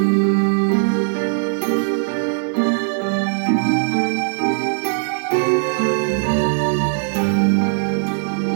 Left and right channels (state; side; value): silent; left; 64 dB below the other